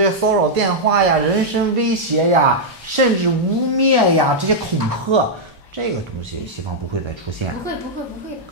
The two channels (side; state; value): both; normal; correlation -0.05